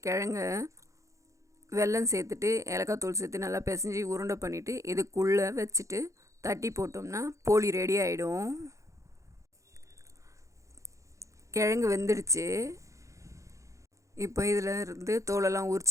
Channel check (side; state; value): left; late; 0.15 ms